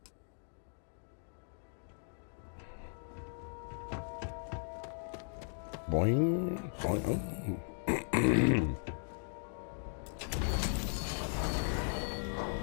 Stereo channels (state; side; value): silent; right; digital silence